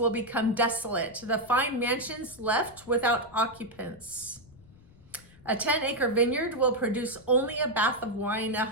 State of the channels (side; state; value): left; noise; rumble, 24 dB below the sound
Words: become desolate, the fine mansions left without occupants. A 10-acre vineyard will produce only a bath of wine. A